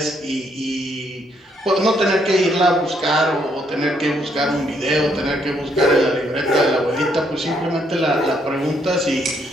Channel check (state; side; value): normal; both; correlation 0.72